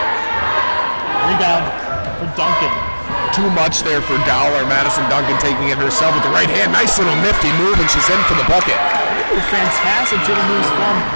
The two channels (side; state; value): both; inverted; correlation -1.00